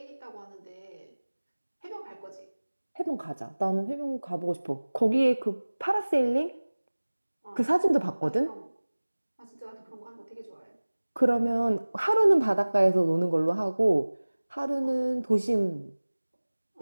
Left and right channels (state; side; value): inverted; both; correlation -1.00